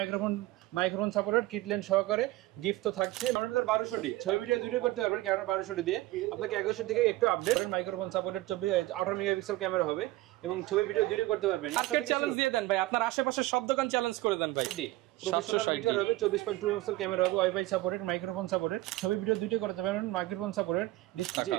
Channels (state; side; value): quieter; left; 18.1 dB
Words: মাইক্রোফোন সাপোর্টেড কিট লেন্স সহকারে গিফট তো থাকছে। আমাদের 1200টি ছবি ভিডিও দুটো করতে পারবেন ক্যামেরা 1200টি দিয়ে। আপনাকে 1100 থেকে একটু update microphone supported 18 megapixel camera হবে এবং ছবি ভিডিও দুটো করতে পারবেন। আজকে চ্যালেঞ্জ দিয়ে দেন ভাই, আপনার আশেপাশে সব দোকান চ্যালেঞ্জ করে দেন ভাই। প্রফেশনাল মিটার হবে, 24.2 মেগাপিক্সেল ক্যামেরা হবে, ওয়াইফাই সাপোর্টেড, মাইক্রোফোন সাপোর্টেড, ছবি ভিডিও দুটো করতে পারবেন, মাইক্রোফোন সাপোর্টেড ডিসপ্লে।